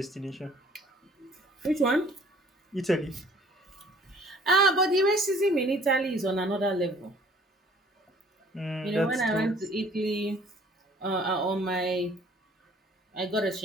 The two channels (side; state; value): both; normal; correlation 0.55